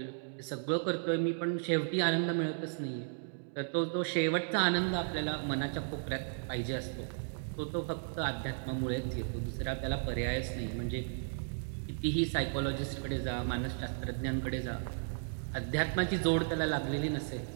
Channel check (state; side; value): silent; left; digital silence